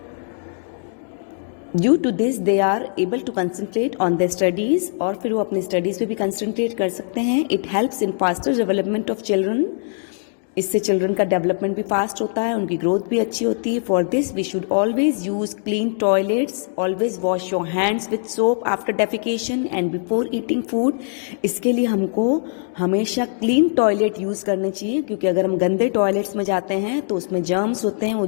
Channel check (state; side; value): silent; right; digital silence